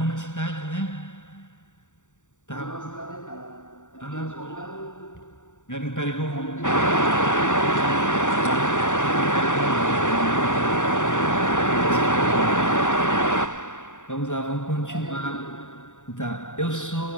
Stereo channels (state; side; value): late; right; 0.86 ms